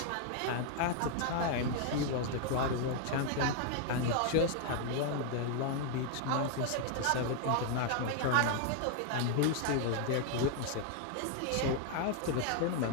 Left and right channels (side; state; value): both; different; correlation 0.00